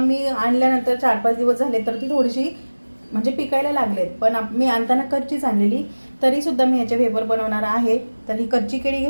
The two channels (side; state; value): both; inverted; correlation -1.00